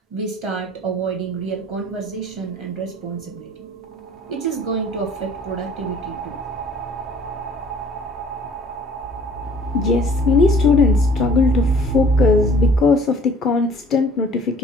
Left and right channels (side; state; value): both; normal; correlation 0.53